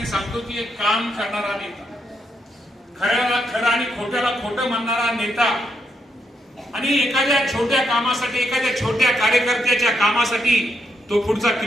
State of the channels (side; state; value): both; normal; correlation 0.79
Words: सांगतो की एक काम करणारा नेता, खऱ्याला खरं आणि खोट्याला खोटं म्हणणारा नेता आणि एखाद्या छोट्या कामासाठी, एखाद्या छोट्या कार्यकर्त्याच्या कामासाठी तो पुढचा